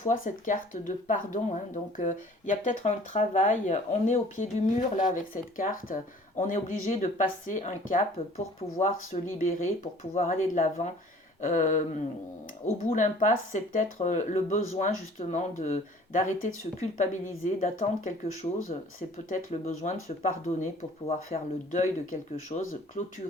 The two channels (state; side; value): normal; both; correlation 0.51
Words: cette carte de pardon, hein, donc il y a peut-être un travail. On est au pied du mur là avec cette carte. On est obligé de passer un cap pour pouvoir se libérer, pour pouvoir aller de l'avant. Au bout de l'impasse, c'est peut-être le besoin justement d'arrêter de se culpabiliser, d'attendre quelque chose. C'est peut-être le besoin de se pardonner pour pouvoir faire le deuil de quelque chose,